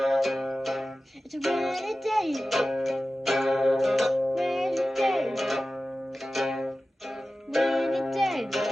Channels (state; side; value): normal; both; correlation 0.95